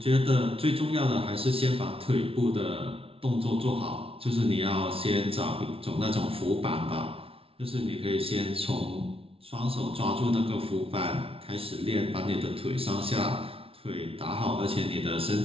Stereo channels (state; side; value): late; left; 0.26 ms